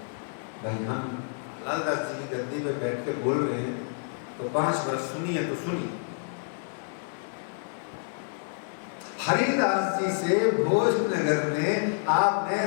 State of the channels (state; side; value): silent; right; digital silence